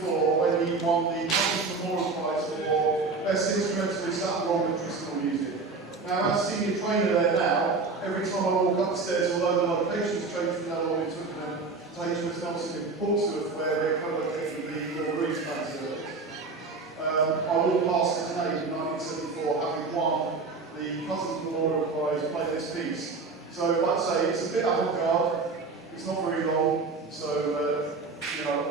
when he won the Conductor Memorial Prize for best instrumentalists that were on traditional music. Now, as senior trainer there now, every time I walk upstairs, although the location's changed from now on, we took them to HMS Nelson in Portsmouth, where we're co-located with the Royal Marines Service. I walked past it today in 1974, having won the Cousins Memorial Prize play this piece. So, like I say, it's a bit avant-garde, it's not very long, so, you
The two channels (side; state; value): left; quieter; 4.1 dB